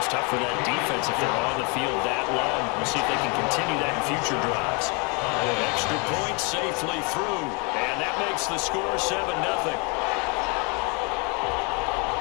tough for that defense if they're on the field that long. We'll see if they can continue that in future drives. Extra point safely through, and that makes the score 7-0.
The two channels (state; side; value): quieter; right; 32.4 dB